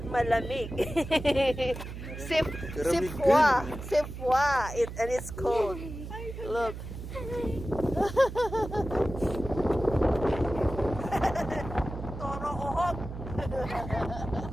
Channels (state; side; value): noise; right; hum, 9 dB below the sound